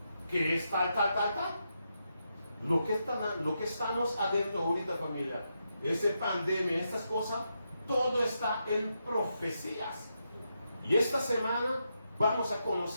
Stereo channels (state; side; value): inverted; both; correlation -0.84